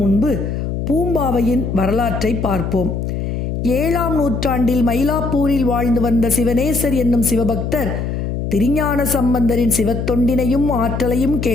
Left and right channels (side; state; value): left; noise; hum, 3 dB below the sound